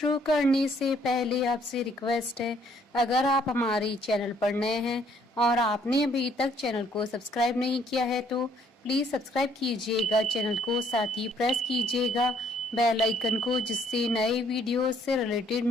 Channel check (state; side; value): normal; both; correlation 0.65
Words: करने से पहले आपसे रिक्वेस्ट है, अगर आप हमारे चैनल पर नए हैं और आपने अभी तक चैनल को सब्सक्राइब नहीं किया है तो प्लीज सब्सक्राइब कीजिएगा चैनल को, साथ ही प्रेस कीजिएगा बेल आइकन को, जिससे नए वीडियो से रिलेटेड